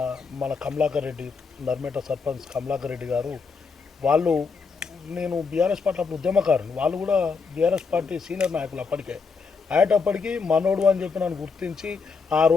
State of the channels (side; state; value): right; quieter; 5.0 dB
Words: మన కమలాకర్ రెడ్డి, నర్మేట సర్పంచ్ కమలాకర్ రెడ్డి గారు, వాళ్ళు నేను బీఆర్ఎస్ పార్టీ అప్పుడు ఉద్యమకారుని, వాళ్ళు కూడా బీఆర్ఎస్ పార్టీ సీనియర్ నాయకులు అప్పటికే అయ్యేటప్పటికి మనోడు అని చెప్పి నన్ను గుర్తించి ఆ